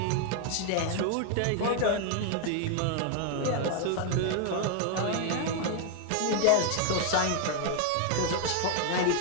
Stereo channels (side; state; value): both; different; correlation 0.00